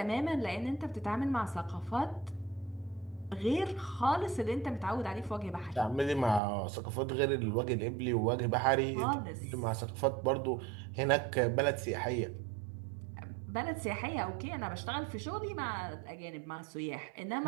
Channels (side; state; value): left; drops out; at 6.4 s